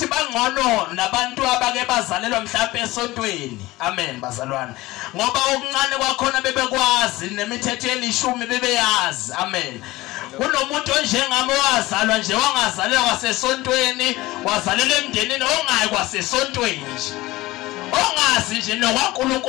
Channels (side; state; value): right; quieter; 19.0 dB